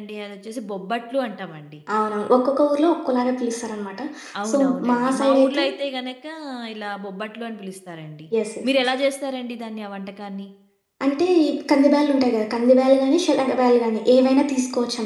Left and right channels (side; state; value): both; identical; correlation 1.00